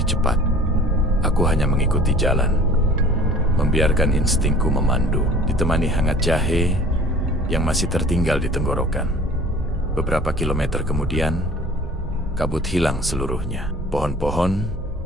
cepat. Aku hanya mengikuti jalan, membiarkan instingku memandu, ditemani hangat jahe yang masih tertinggal di tenggorokan. Beberapa kilometer kemudian, kabut hilang seluruhnya. Pohon-pohon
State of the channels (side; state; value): both; normal; correlation 0.47